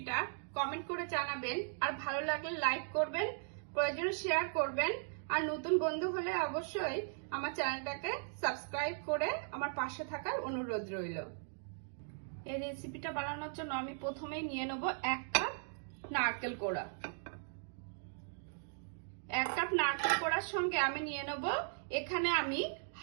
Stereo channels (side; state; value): left; silent; digital silence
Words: কমেন্ট করে জানাবেন, আর ভালো লাগলে লাইক করবেন, প্রয়োজনে শেয়ার করবেন, আর নতুন বন্ধু হলে অবশ্যই আমার চ্যানেলটাকে সাবস্ক্রাইব করে আমার পাশে থাকার অনুরোধ রইল। এই রেসিপিটা বানানোর জন্য আমি প্রথমেই নিয়ে নেব 1 কাপ নারকেল কোড়া। 1 কাপ নারকেল কোড়ার সঙ্গে আমি নিয়ে নেব এখানে আমি